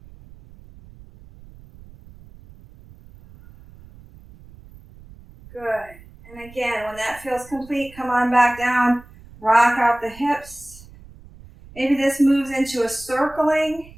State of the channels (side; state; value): right; noise; rumble, 21 dB below the sound